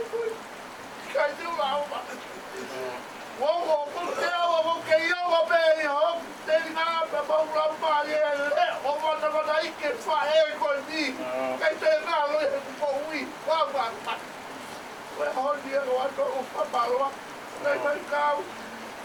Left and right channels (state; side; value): identical; both; correlation 1.00